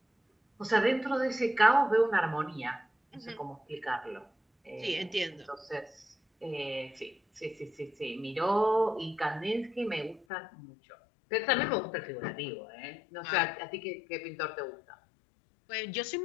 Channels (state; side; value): drops out; right; at 10.2 s